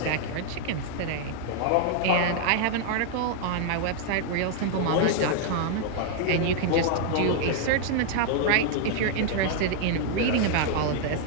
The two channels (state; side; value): different; both; correlation 0.00